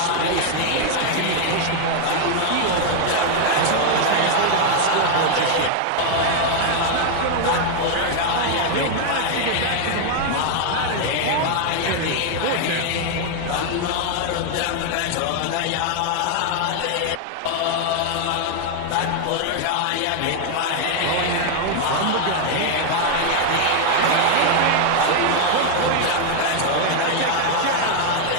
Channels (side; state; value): both; different; correlation 0.00